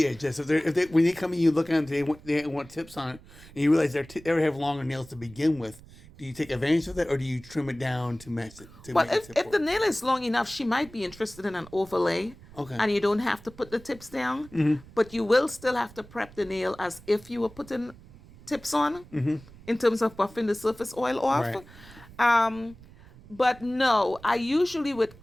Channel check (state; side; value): noise; right; rumble, 21 dB below the sound